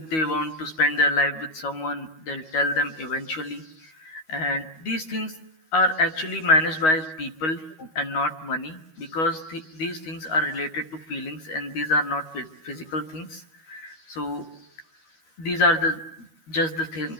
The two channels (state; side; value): late; right; 13 ms